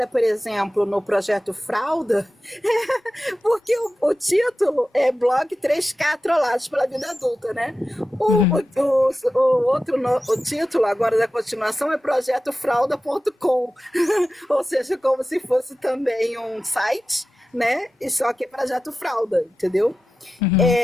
por exemplo, no projeto Fralda, porque o título é Blog 3K Trollados pela Vida Adulta, né? Uhum, O título agora da continuação é Projeto Fralda.com, ou seja, como se fosse também um site, né? E só que é Projeto Fralda, entendeu? uhum,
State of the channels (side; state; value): both; normal; correlation 0.93